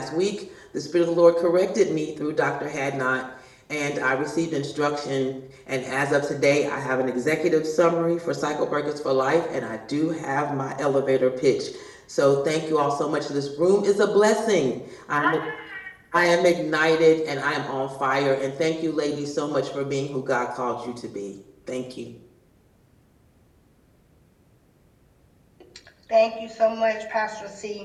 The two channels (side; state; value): both; identical; correlation 1.00